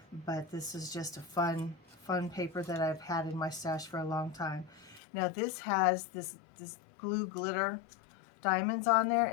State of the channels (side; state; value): right; drops out; at 5.0 s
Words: But this is just a fun paper that I've had in my stash for a long time. Now this has this glue glitter diamonds on there,